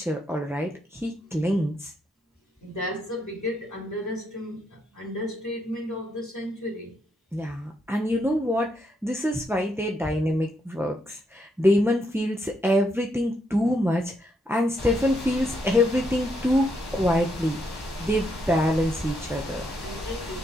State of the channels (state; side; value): normal; both; correlation 0.77